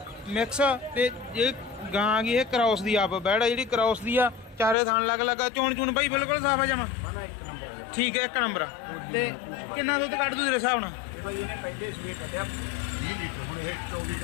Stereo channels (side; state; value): right; drops out; at 4.8 s